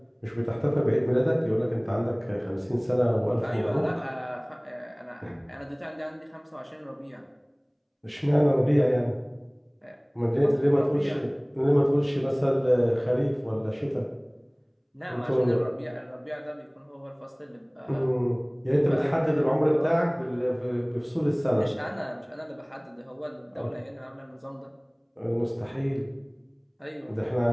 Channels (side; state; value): both; identical; correlation 1.00